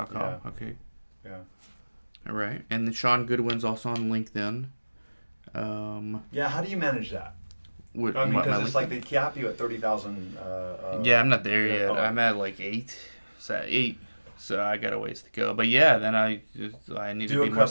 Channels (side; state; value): both; inverted; correlation -1.00